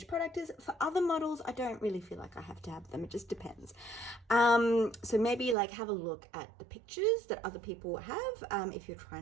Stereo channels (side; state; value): left; drops out; at 5.6 s